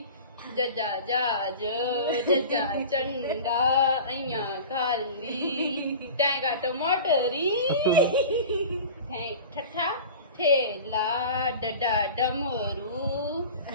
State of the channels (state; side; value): inverted; both; correlation -0.36